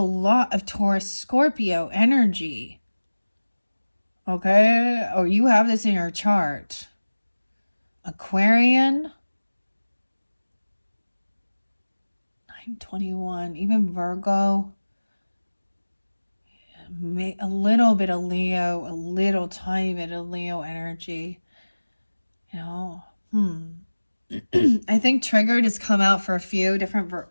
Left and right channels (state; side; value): inverted; both; correlation -1.00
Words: of Taurus Scorpio energy. Okay? Or you have this in your chart. Aquarian. 921. Even Virgo. A little bit of Leo. A little tiny bit of Leo energy. You know? I think triggered has come out for a few different,